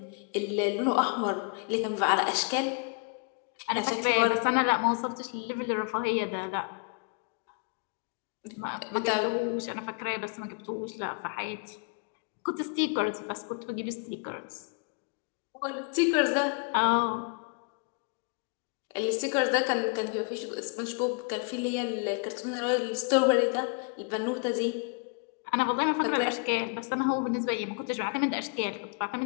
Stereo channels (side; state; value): right; quieter; 36.9 dB